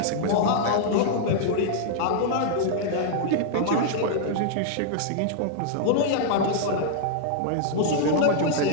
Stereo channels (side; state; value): both; different; correlation -0.01